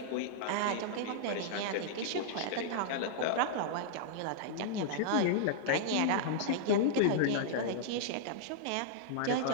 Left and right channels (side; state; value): both; different; correlation -0.01